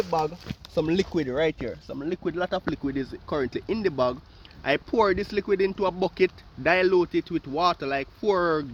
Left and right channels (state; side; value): identical; both; correlation 1.00